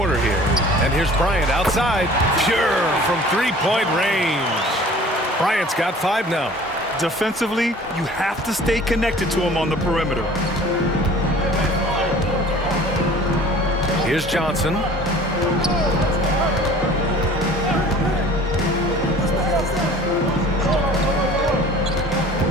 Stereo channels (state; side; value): normal; both; correlation 0.47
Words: here. And here's Bryant outside. Pure from 3-point range. Bryant's got 5 now. Defensively, you have to stay connected to him on the perimeter. Here's Johnson.